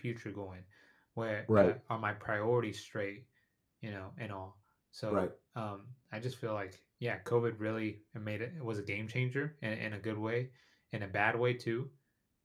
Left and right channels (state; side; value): identical; both; correlation 1.00